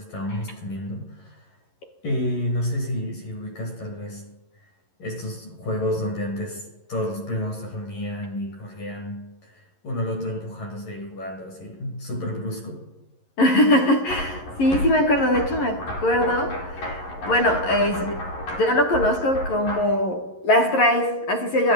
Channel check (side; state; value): right; late; 11 ms